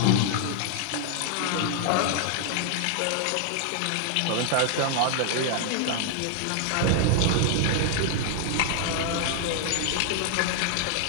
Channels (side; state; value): both; different; correlation 0.00